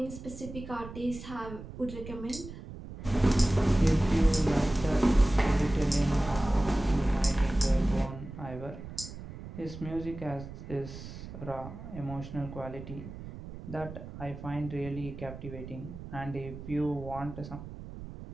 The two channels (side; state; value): right; noise; rumble, 12 dB below the sound